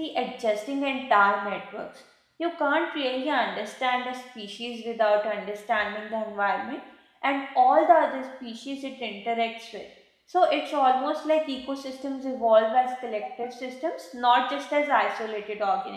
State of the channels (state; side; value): identical; both; correlation 1.00